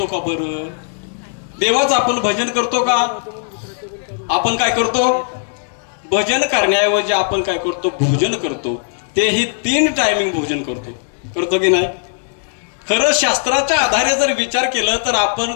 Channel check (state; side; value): silent; right; digital silence